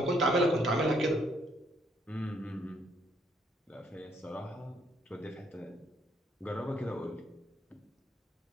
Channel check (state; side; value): normal; both; correlation 0.70